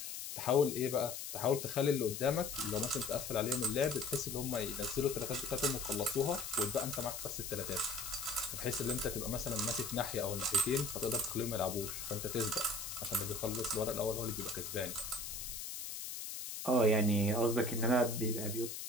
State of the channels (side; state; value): left; noise; hiss, 7 dB below the sound